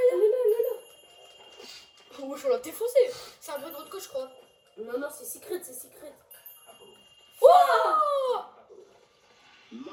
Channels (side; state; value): both; identical; correlation 1.00